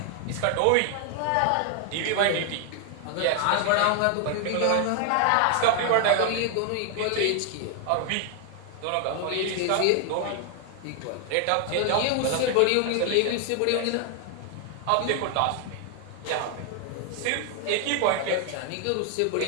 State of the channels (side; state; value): both; different; correlation 0.00